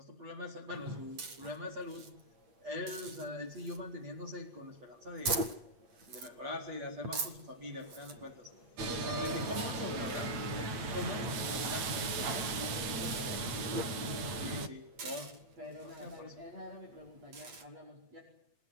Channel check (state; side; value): late; left; 8.5 ms